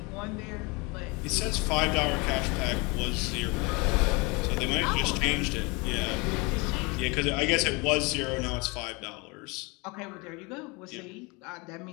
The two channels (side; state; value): right; quieter; 27.7 dB